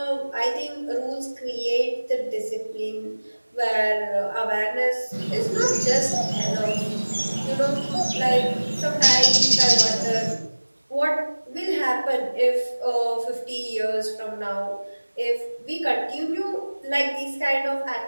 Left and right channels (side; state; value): both; inverted; correlation -1.00